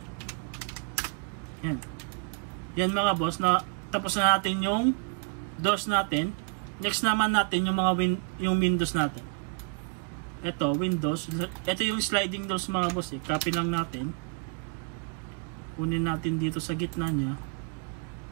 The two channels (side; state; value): left; quieter; 36.8 dB